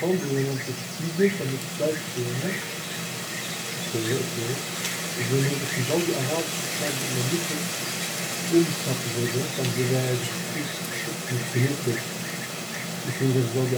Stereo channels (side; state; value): both; identical; correlation 1.00